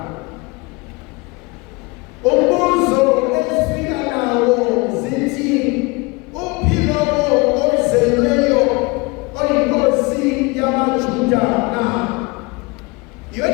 Umbuzo ezifika nawo zithi uphilo ozelweyo oyinkosi yamaJuda na.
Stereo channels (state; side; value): quieter; right; 26.2 dB